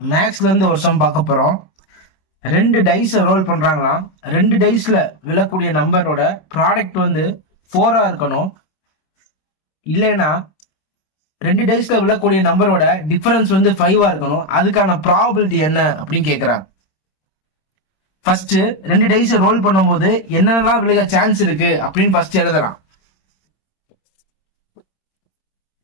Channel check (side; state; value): right; late; 26 ms